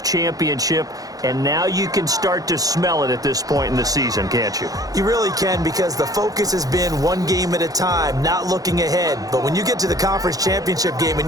championship. And now you can start to smell it at this point in the season, can't you? You really can, because the focus has been one game at a time, not looking ahead. But when you get to the conference championship game and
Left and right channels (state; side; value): late; left; 0.17 ms